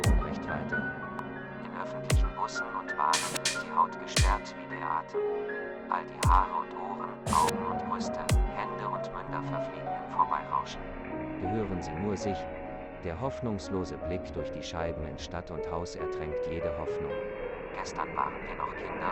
Unrecht weiter. In öffentlichen Bussen und Bahnen ist die Haut gesperrt wie der Atem. All die Haare und Ohren, Augen und Brüste, Hände und Münder verfliegen im Vorbeirauschen. Gehören sie nur sich? Der hoffnungslose Blick durch die Scheiben in Stadt und Haus ertränkt jede Hoffnung. Gestern waren wir noch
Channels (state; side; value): identical; both; correlation 1.00